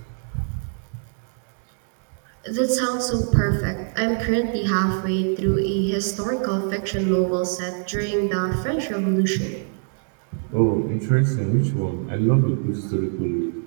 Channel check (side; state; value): left; silent; 59 dB below the other